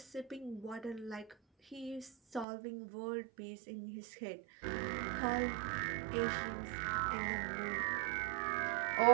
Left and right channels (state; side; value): drops out; left; at 2.5 s